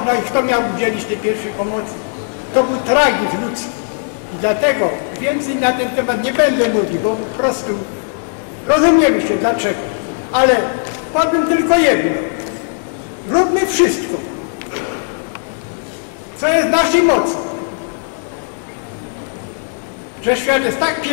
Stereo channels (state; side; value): silent; right; digital silence